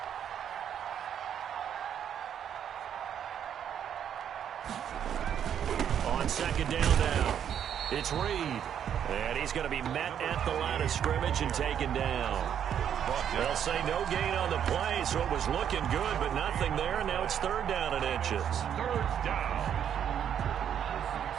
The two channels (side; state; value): left; quieter; 9.0 dB